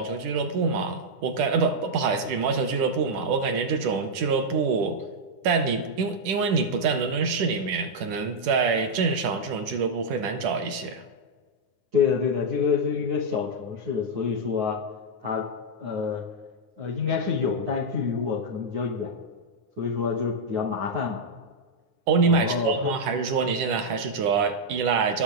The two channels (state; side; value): late; left; 10 ms